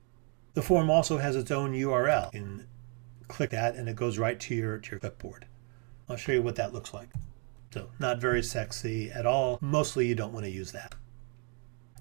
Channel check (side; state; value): left; quieter; 38.9 dB